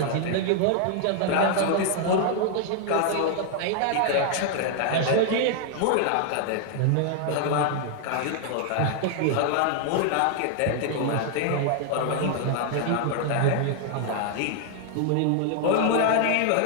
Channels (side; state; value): both; different; correlation 0.00